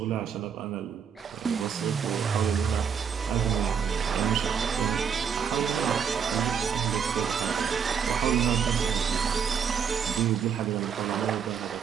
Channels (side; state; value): left; quieter; 7.0 dB